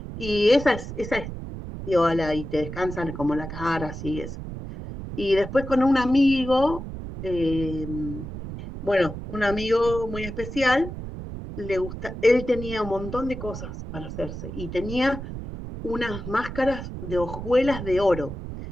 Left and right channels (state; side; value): noise; right; rumble, 9 dB below the sound